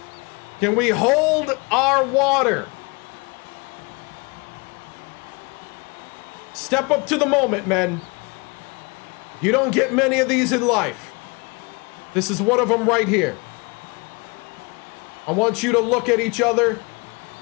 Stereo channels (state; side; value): quieter; right; 29.3 dB